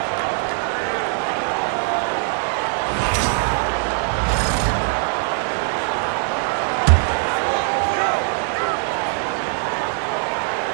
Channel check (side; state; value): left; silent; 57 dB below the other